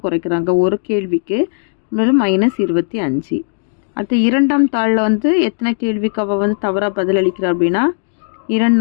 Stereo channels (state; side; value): silent; right; digital silence